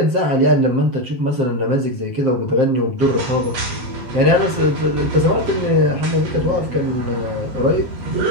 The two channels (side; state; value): left; late; 7.6 ms